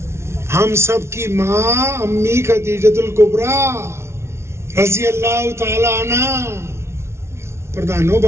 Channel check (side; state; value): left; late; 0.13 ms